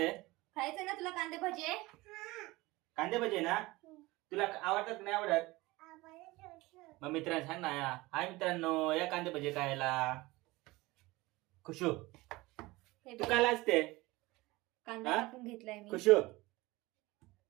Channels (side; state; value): left; quieter; 20.9 dB